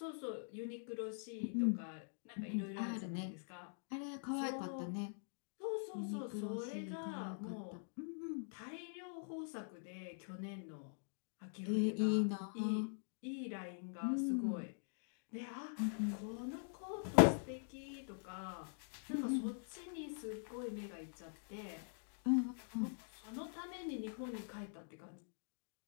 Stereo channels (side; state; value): right; silent; digital silence